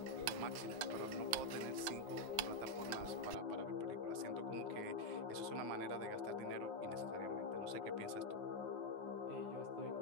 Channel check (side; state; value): left; late; 9.6 ms